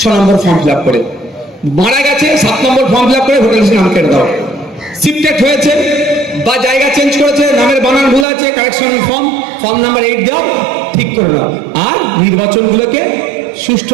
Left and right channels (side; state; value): left; drops out; at 8.2 s